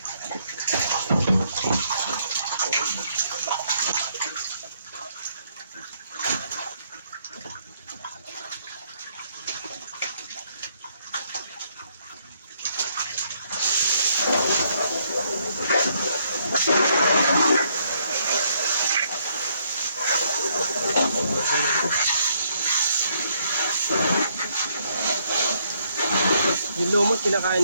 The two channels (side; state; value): both; inverted; correlation -0.70